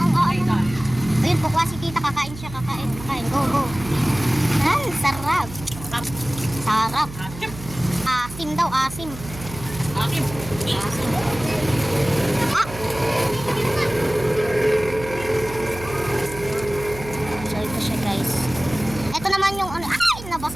Ayun, pukwa si tita, kakain siya, kakain. Go, go. Ay, sarap. Sarap. Asim daw, asim. Akim. Asim. Ah! So, ito siya guys. Ito naman yung ano, ay,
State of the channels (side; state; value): right; noise; hum, 13 dB below the sound